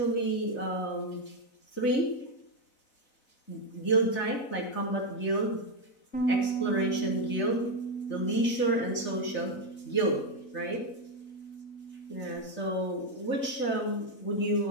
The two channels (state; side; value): late; right; 3.3 ms